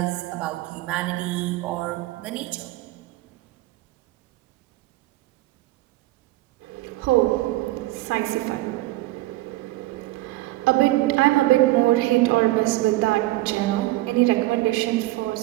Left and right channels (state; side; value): quieter; left; 18.2 dB